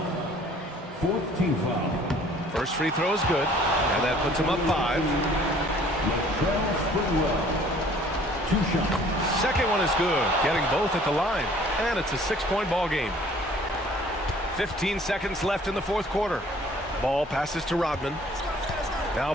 4th team foul. First free throw is good, and that puts him up 5. Sprewell. 2 shots. Second one is good, getting both at the line, and it's a 6-point ball game. 15 seconds left in the 4th quarter. Ball passes to Rodman. Now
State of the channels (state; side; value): normal; both; correlation 0.54